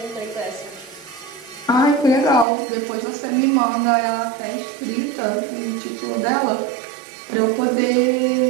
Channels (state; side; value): drops out; left; at 2.5 s